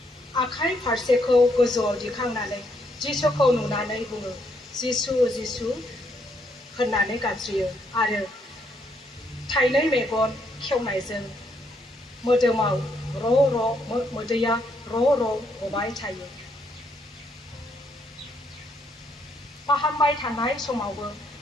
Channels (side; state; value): both; normal; correlation 0.73